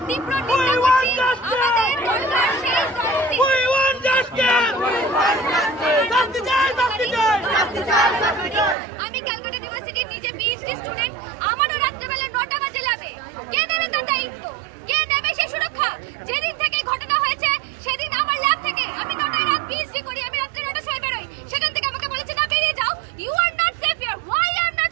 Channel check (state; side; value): drops out; left; at 8.8 s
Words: তীব্র নিন্দা করছি। আমাদের দরকার সেই আমি ক্যালকাটা ইউনিভার্সিটির নিজে পিএইচডি স্টুডেন্ট, আমারও রাত্রেবেলা 9টা বাজে ল্যাবে। কে নেবে তার দায়িত্ব? কে নেবে সেই সুরক্ষা? যেদিন থেকে ঘটনা হয়েছে সেদিন আমার ল্যাব থেকে আমি 9টায় রাত পিএইচডি করি, আমি রাত্রে 9টার সময় বেরোই, সেখান থেকে আমাকে বলেছে না বেরিয়ে যাও। You are not safe here. Why I am